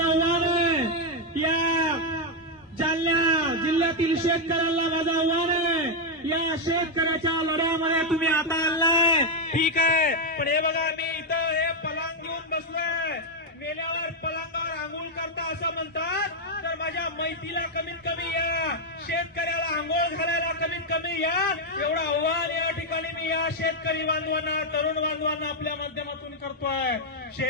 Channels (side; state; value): both; normal; correlation 0.01